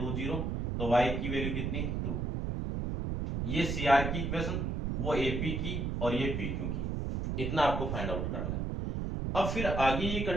0। तो y की वैल्यू कितनी 2, ये CR की इक्वेशन, वो AP की और ये PQ की, इतना आपको फाइंड आउट करना है। अब फिर आगे ये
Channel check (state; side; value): noise; right; rumble, 1 dB below the sound